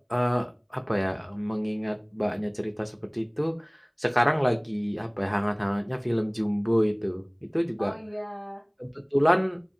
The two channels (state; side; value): identical; both; correlation 1.00